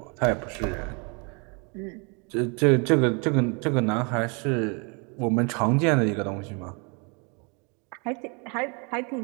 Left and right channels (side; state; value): left; quieter; 33.4 dB